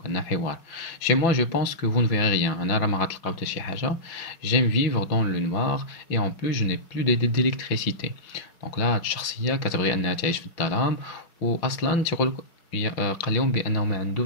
عندنا حوار. Chez moi, je pense que vous ne verrez rien. أنا راه ما غتلقاو حتى شي حاجة. J'aime vivre dans le noir et en plus je n'ai plus d'électricité. Donc là الشخصية كتبغي أنها تعيش في الظلام وأصلا تيقول قال لهم بأنه ما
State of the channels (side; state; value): right; late; 5.8 ms